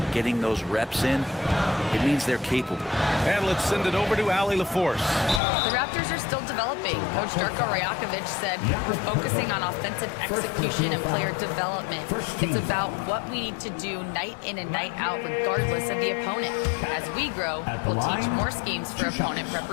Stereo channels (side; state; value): right; drops out; at 5.4 s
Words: getting those reps in, it means they're capable. And let's send it over to Allie LaForce. The Raptors are still developing. Coach Darko Rajakovic said we're focusing on offensive execution and player development. It's about what we need to do night in and night out regardless of the opponent. As we grow, we'll teach more schemes for opponent